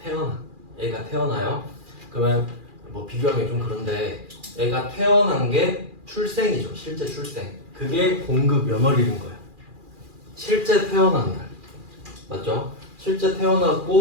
애가 태어나요. 그러면 뭐 비교하기 좀 그런데 애가 태어난 게 출생이죠. 실제 출생. 그게 공급 연월일인 거예요. 실제 태어난 날. 맞죠? 실제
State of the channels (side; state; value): left; late; 2.4 ms